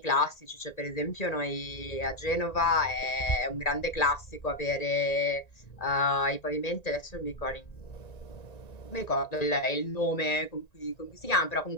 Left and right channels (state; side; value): late; right; 1.9 ms